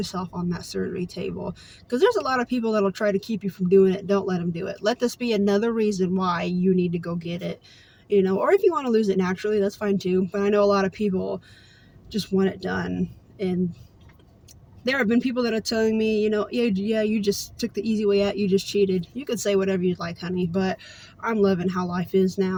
on that surgery table, because there's a lot of people that'll try to keep you from doing it. Don't let them do it. Let this be another reason why you need to go get it, you know. Or if you want to lose it naturally, that's fine too, but I know a lot of people just want it done. And there have been people that are telling me, you know, yeah, you just took the easy way out, you just cheated. You could say whatever you'd like, honey, but I'm loving how life is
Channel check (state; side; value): identical; both; correlation 1.00